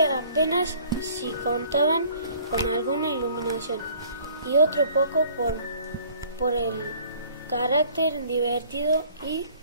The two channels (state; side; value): inverted; both; correlation -0.54